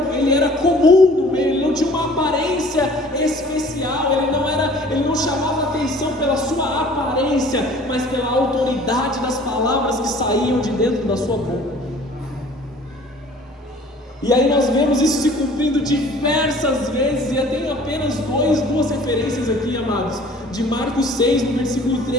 comum no meio, ele não tinha uma aparência especial, ele não chamava atenção pela sua aparência, mas pela autoridade das palavras que saíam de dentro da sua boca. E aí nós vemos isso se cumprindo diversas vezes, e eu tenho apenas duas referências aqui, amados, de Marcos 6, no versículo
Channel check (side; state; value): both; normal; correlation 0.50